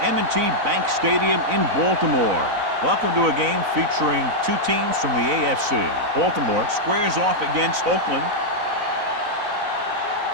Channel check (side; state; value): left; late; 4.0 ms